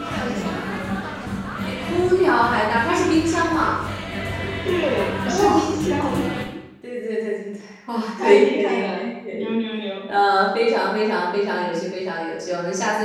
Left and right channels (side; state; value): both; identical; correlation 1.00